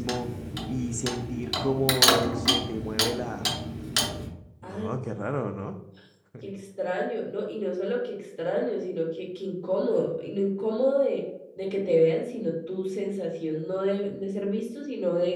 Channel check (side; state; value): both; identical; correlation 1.00